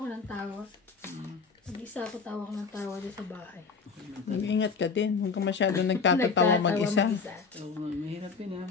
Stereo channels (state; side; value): quieter; right; 5.1 dB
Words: ng tawa. Mag-isa ako tawa ko ng tawa doon sa bahay. Mag-ingat ka din. Huwag ka masyado nagtatatawa mag-isa. Oo, mahirap yun ha.